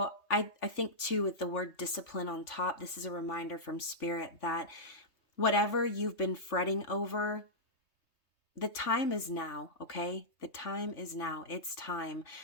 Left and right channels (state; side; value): late; right; 3.2 ms